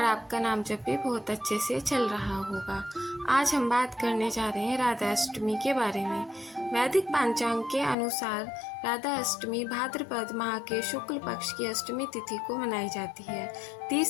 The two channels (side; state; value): right; drops out; at 8.0 s